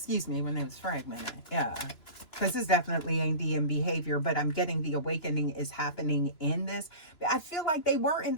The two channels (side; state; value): right; late; 2.9 ms